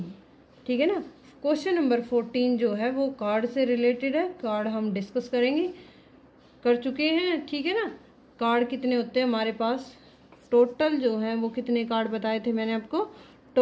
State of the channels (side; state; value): both; identical; correlation 1.00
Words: ठीक है ना। क्वेश्चन नंबर 14 जो है वो कार्ड से रिलेटेड है। कार्ड हम डिस्कस करेंगे, कर चुके हैं। ठीक है ना। कार्ड कितने होते हैं हमारे पास, टोटल जो है वो कितने कार्ड बताए थे मैंने आपको,